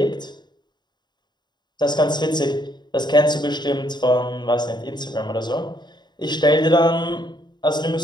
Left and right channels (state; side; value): late; right; 0.21 ms